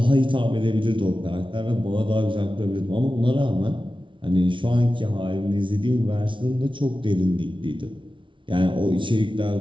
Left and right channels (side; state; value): left; late; 0.24 ms